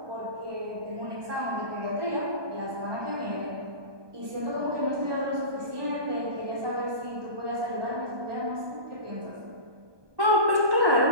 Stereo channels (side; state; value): left; late; 1.2 ms